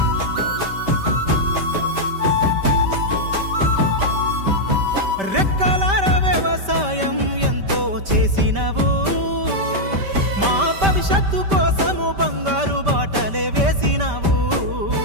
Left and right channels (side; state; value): left; late; 5.1 ms